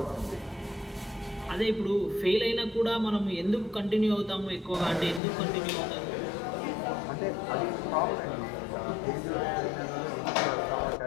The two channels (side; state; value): right; drops out; at 5.2 s